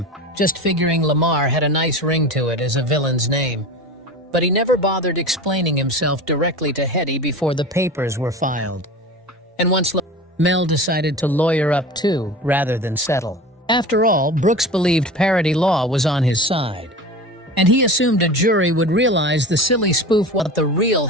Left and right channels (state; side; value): normal; both; correlation 0.33